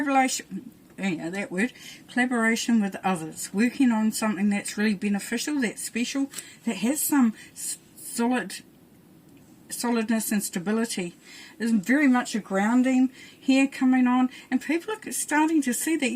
with others, working on something that's really beneficial, that's special, that has some solidness and stability. There's very much a grounding here coming on, and people are starting to see that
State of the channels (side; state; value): both; identical; correlation 1.00